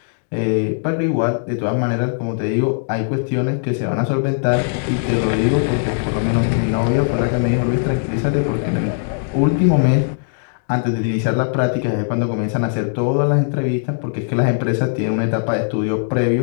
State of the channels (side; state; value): right; silent; digital silence